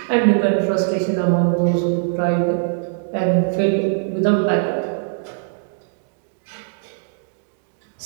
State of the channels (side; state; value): left; silent; digital silence